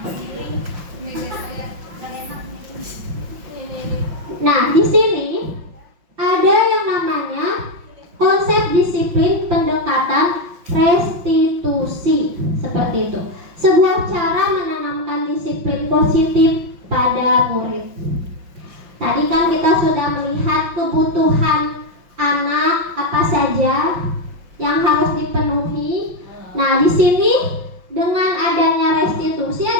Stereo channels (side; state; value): left; late; 5.7 ms